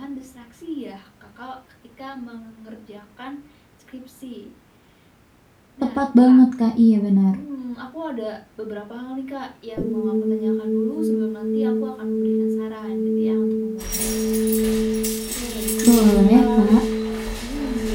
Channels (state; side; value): identical; both; correlation 1.00